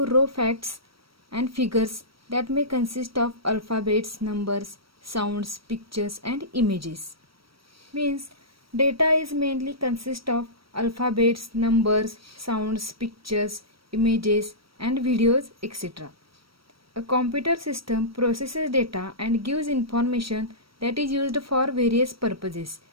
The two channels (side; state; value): left; late; 0.75 ms